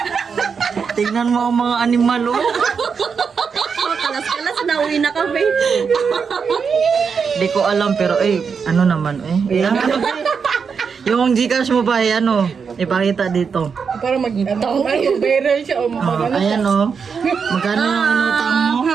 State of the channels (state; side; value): quieter; left; 6.0 dB